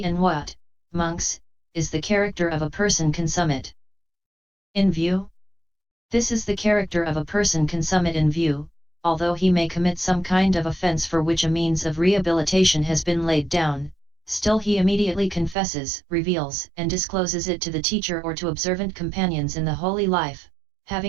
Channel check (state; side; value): drops out; left; at 15.6 s